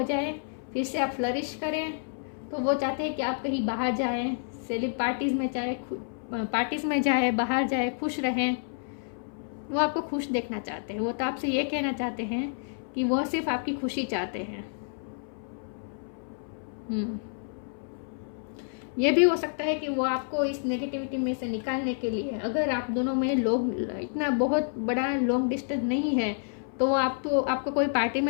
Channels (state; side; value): silent; right; 59 dB below the other